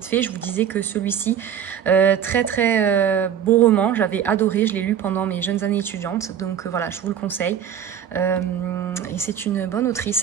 fait. Je vous disais que celui-ci, très beau roman, j'avais adoré, je l'ai lu pendant mes jeunes années étudiantes, donc voilà, je vous le conseille. Et c'est une bonne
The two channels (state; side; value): quieter; left; 8.9 dB